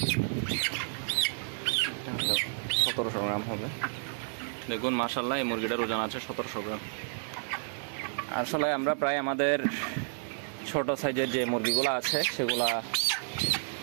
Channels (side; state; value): left; silent; digital silence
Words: এটা 1700 গ্রাম হবে। দেখুন মাশাআল্লাহ এই মুরগিটার ওজন আছে 1700 গ্রাম। আসলে আমরা প্রায় আমাদের ছোট সাইজের যে মুরগিগুলো আছে সেগুলা